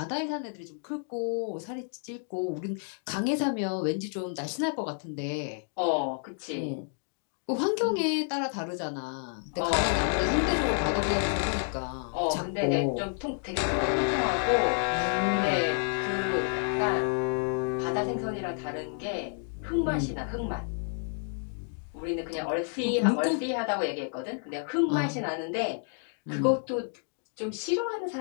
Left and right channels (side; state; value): right; silent; 56 dB below the other